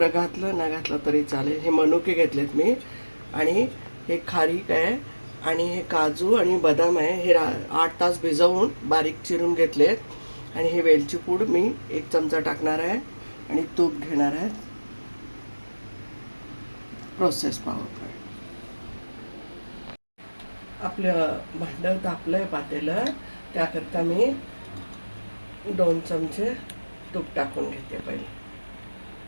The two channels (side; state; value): both; inverted; correlation -1.00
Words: घातलं ना घातलं तरी चालेल. हे मनुके घेतलेत मी. आणि हे खारीक आहे आणि हे काजू आणि बदाम आहे. हे 8 तास भिजवून बारीक चिरून घेतलेत. आणि हे वेलची पूड मी 1 चमचा टाकणार आहे आणि तूप घेणार आहे. प्रोसेस पाहू. आपलं भांडं तापलंय पातेलं. त्याकरता मी 2 चमचे तूप टाकून घेते पहिले.